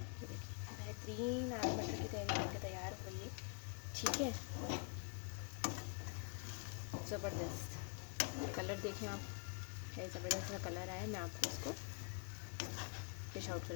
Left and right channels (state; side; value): quieter; right; 38.3 dB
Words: ये देखिए बेहतरीन आलू मटर की तहरी बनके तैयार हो गई है। ठीक है, ज़बरदस्त कलर देखें आप, है ज़बरदस्त का कलर आया। मैं आपको उसको फिश आउट